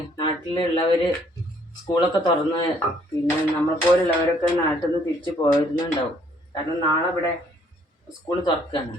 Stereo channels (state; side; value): normal; both; correlation 0.64